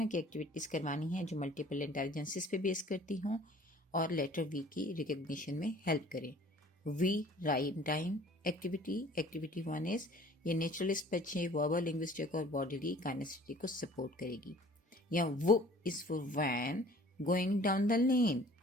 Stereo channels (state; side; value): normal; both; correlation 0.51